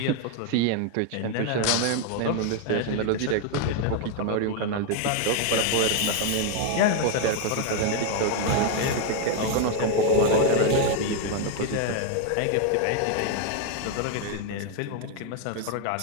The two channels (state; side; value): different; both; correlation 0.01